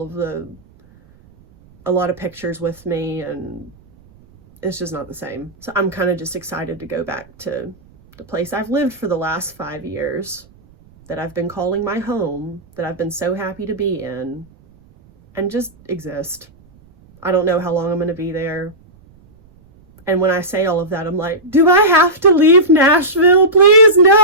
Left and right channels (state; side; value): noise; right; rumble, 28 dB below the sound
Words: lot of pictures with me, and it's just not the same. So I'm kind of just excited to go back to the place I've lived for the last 5 years, that I've been calling my home, that I've been so happy to be in, and just exist. I don't know how long I'm going to be there. And when I say all of that, I'm like, do I have to leave Nashville? Please,